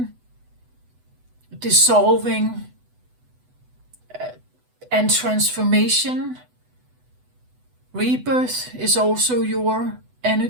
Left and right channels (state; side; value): late; left; 8.0 ms